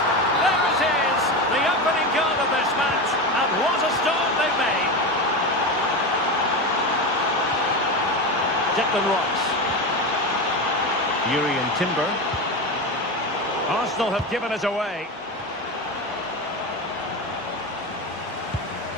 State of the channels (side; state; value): both; normal; correlation 0.20